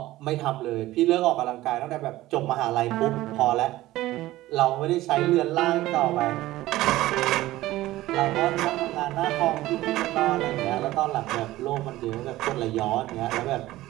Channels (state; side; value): quieter; left; 16.6 dB